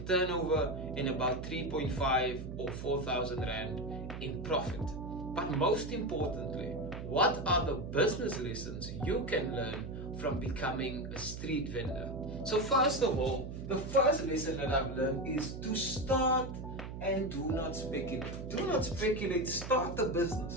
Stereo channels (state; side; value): noise; right; hum, 8 dB below the sound